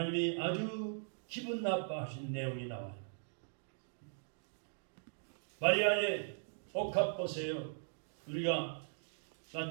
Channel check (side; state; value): left; silent; digital silence